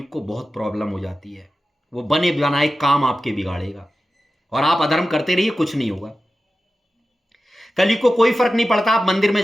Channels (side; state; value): both; normal; correlation 0.93